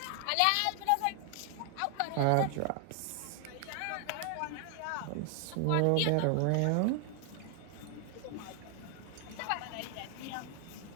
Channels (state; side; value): different; both; correlation 0.00